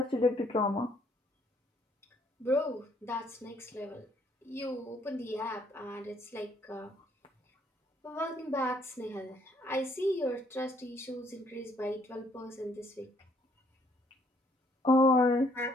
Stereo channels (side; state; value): both; normal; correlation 0.66